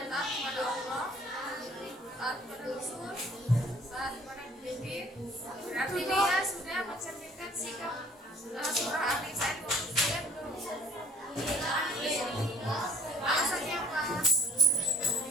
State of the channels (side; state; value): both; normal; correlation 0.54